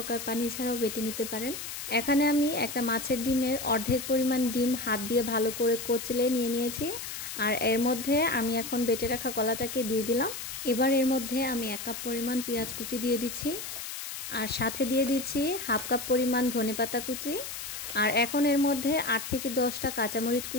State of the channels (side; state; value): left; noise; hiss, 7 dB below the sound